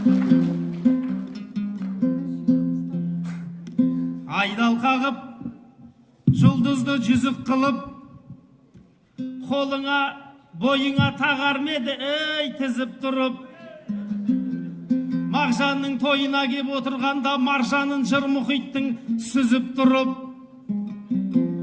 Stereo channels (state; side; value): identical; both; correlation 1.00